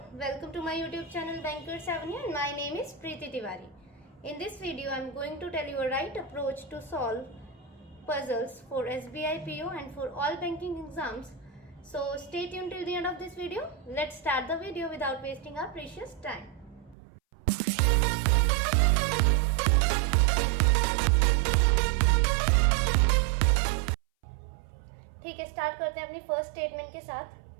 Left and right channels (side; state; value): left; drops out; at 16.9 s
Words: welcome to my YouTube channel Bankers Avenue and my name is Preeti Tiwari. In this video I am going to tell you a right approach to solve puzzles for SBI PO and for all banking exams. So stay tuned till the end of this video. Let's start the video without wasting our precious time. ठीक है, start करते हैं अपनी first statement के साथ।